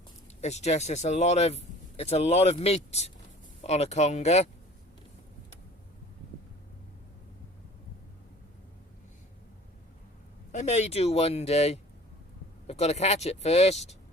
It's a lot of meat on a conga. I may do one day. I've got to catch it first.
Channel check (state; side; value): normal; both; correlation 0.46